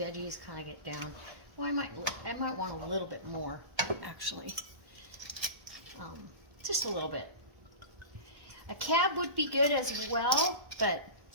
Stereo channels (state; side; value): late; left; 1.1 ms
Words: kind of get down. Well, I might want a little bit more, actually. Just a little bit. A cab would be good as well, but